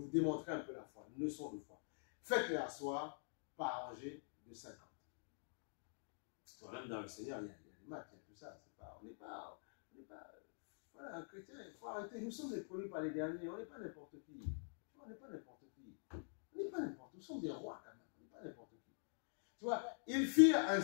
vous démontrer un peu la foi, une leçon de foi. Faites-les asseoir par rangée de 50. Même dans le Seigneur, il y a des maths, il y a tout ça. On n'est pas voilà, un chrétien, il faut arrêter. Nous sommes les premiers par les derniers, on n'est pas n'importe qui. On n'est pas n'importe qui. On n'est pas n'importe qui. Nous sommes des rois quand même, on n'est pas n'importe qui. Tu vois, ils firent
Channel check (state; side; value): silent; right; digital silence